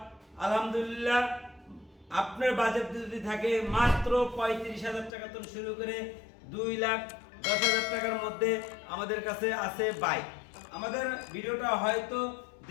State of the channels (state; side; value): drops out; right; at 5.1 s